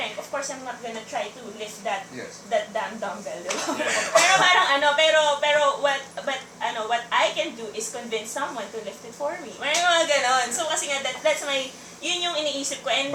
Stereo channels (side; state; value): both; identical; correlation 1.00